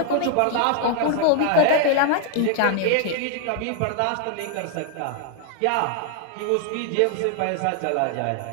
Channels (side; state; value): both; different; correlation 0.00